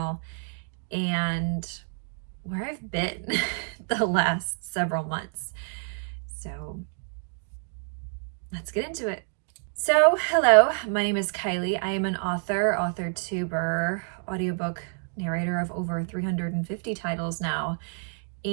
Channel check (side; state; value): left; silent; 58 dB below the other